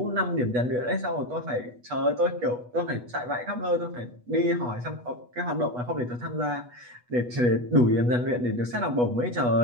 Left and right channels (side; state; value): left; late; 8.2 ms